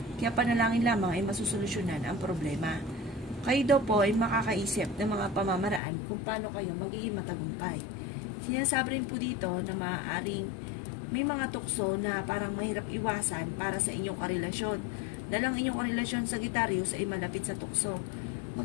Kaya panalangin lamang ay masusolusyonan ang problema. Kayo daw po ay makakaisip ng mga pamamaraan kung paano kayo magiging matagumpay. Sinasabi rin po dito na maaaring may mga tukso na parang mahirap iwasan para sa inyong karelasyon. Dahil ang inyong karelasyon Sagittarius ay malapit sa tukso.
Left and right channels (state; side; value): drops out; right; at 5.8 s